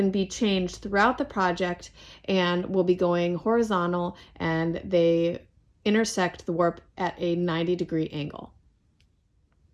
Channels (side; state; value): both; identical; correlation 1.00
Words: be changed throughout the project and will be going horizontal, and they intersect the warp at a 90-degree angle.